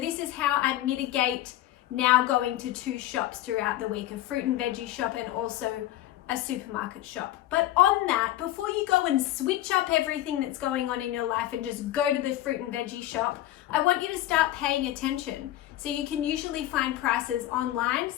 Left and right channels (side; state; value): right; quieter; 14.3 dB